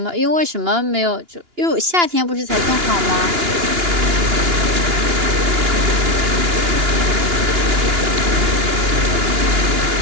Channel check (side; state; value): left; late; 2.9 ms